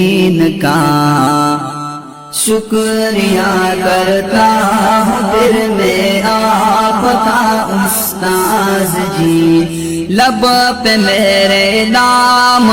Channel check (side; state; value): both; identical; correlation 1.00